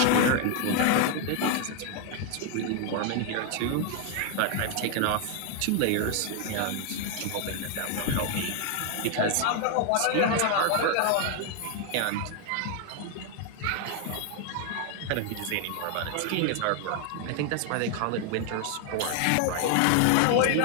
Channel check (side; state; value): both; different; correlation 0.00